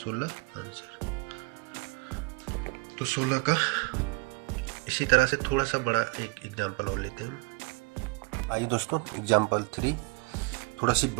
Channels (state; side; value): quieter; left; 28.9 dB